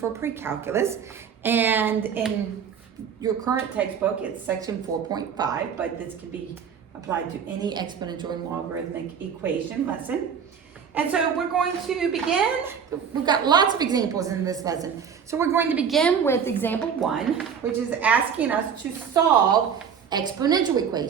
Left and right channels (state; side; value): quieter; left; 7.3 dB